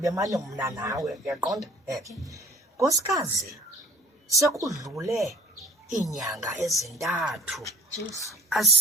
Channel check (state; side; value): normal; both; correlation 0.49